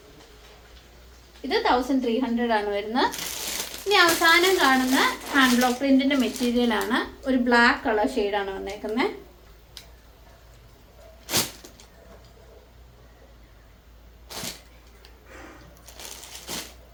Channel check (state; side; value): identical; both; correlation 1.00